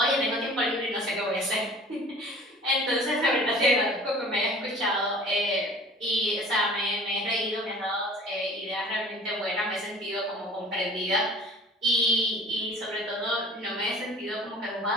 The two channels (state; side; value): normal; both; correlation 0.46